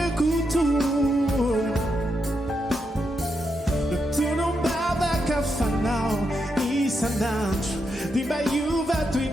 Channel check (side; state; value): both; normal; correlation 0.83